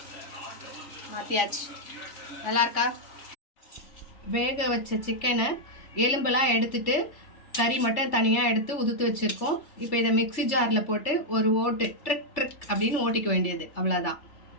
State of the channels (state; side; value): late; right; 3.4 ms